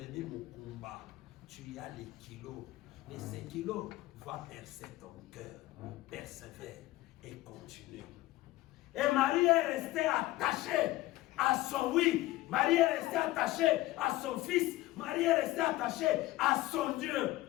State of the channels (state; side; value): quieter; right; 17.3 dB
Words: mon combat. Tu as les kilos. Mais ces kilos vont percer ton cœur. Persévère et continue. Et Marie est restée attachée à son oui. Marie est restée attachée à son fils. Marie est restée attachée à son Dieu.